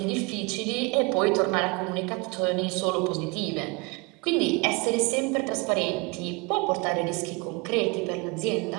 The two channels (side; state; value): left; quieter; 27.9 dB